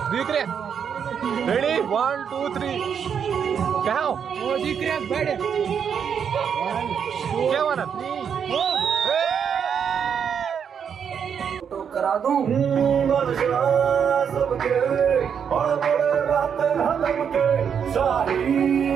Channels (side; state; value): left; quieter; 7.5 dB